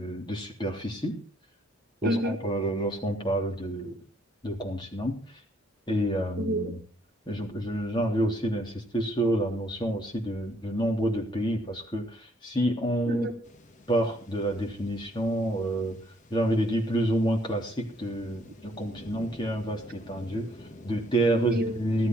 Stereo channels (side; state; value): both; normal; correlation 0.67